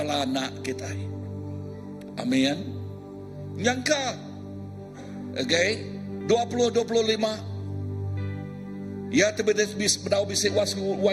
kita. Amin. Nyangka. Okay. 20-25. Ya tebedis bedau bisik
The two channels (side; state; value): both; identical; correlation 1.00